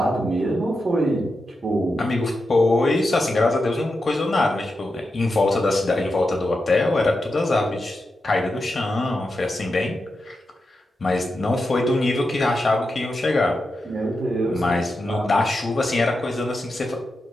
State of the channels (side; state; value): both; normal; correlation 0.88